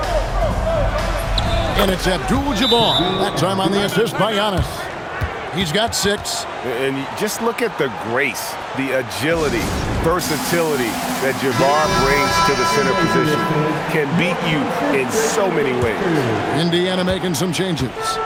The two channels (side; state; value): both; identical; correlation 1.00